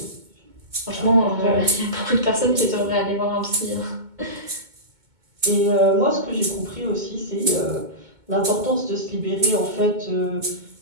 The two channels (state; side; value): late; left; 2.2 ms